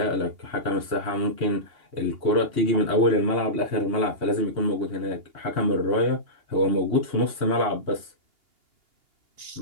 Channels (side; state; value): left; late; 2.8 ms